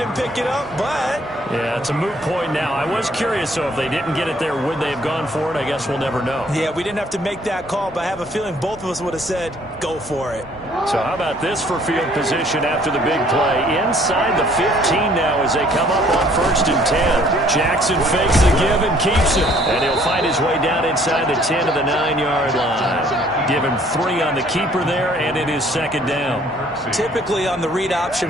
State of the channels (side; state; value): both; normal; correlation 0.60